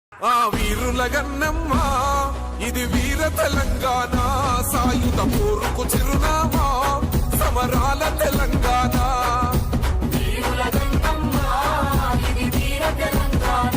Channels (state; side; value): identical; both; correlation 1.00